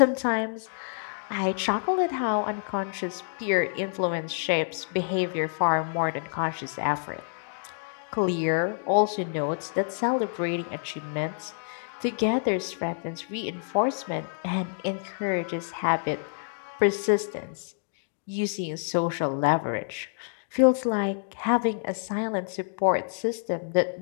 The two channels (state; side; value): silent; right; digital silence